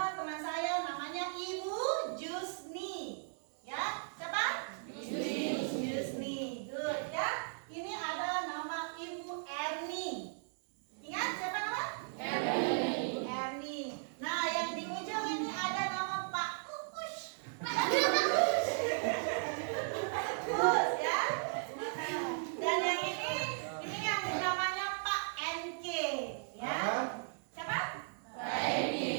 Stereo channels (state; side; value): silent; left; digital silence